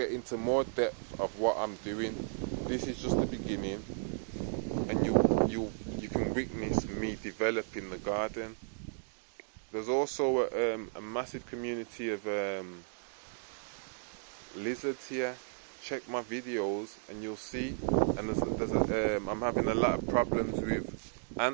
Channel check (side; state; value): left; silent; digital silence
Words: into more depth of what I'm doing. This is just the beginning, and you can witness me developing the garden. There's also a massive community of lizards here. Check my videos and you'll see. And I'm having a lot of problems with